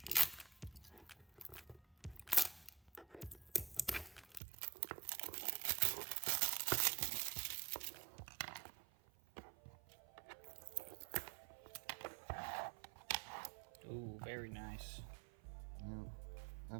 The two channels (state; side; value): drops out; left; at 4.4 s